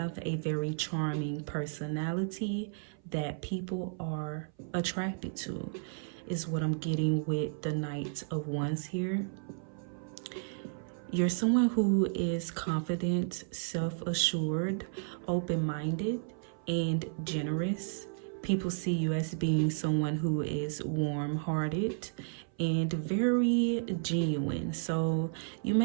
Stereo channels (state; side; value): silent; left; 56 dB below the other